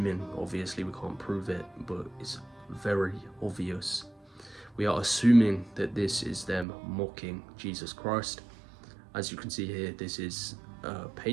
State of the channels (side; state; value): left; drops out; at 6.7 s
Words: obviously we can't prove it, but it's very obvious. We are assuming that this is them mocking Jesus Christ. As you can see here, this is a